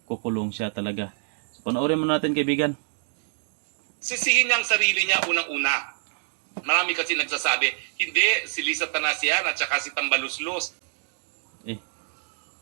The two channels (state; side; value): silent; left; digital silence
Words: siya talaga. So panoorin mo natin kaibigan. Sisihin niya ang sarili niya unang-una. Marami kasi nagsasabi, hindi, si Lisa Tanasian at saka si Tambaluslos.